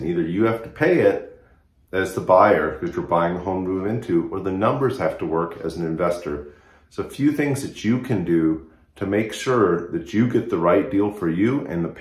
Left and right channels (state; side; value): identical; both; correlation 1.00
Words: either you have to pay it as the buyer because you're buying a home to move into, or the numbers have to work as an investor. So a few things that you can do to make sure that you get the right deal for you and the